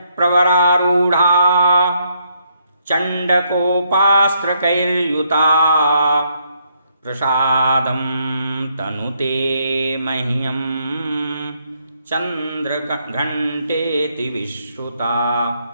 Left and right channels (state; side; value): inverted; both; correlation -0.73